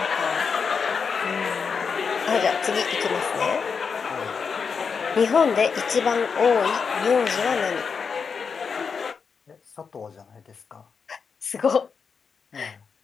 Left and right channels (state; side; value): quieter; right; 5.8 dB